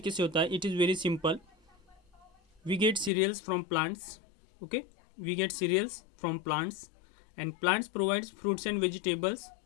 से होता है। It is very simple, we get cereals from plants, okay, we get cereals from plants and plants provides fruits and vegetables,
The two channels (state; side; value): drops out; right; at 3.1 s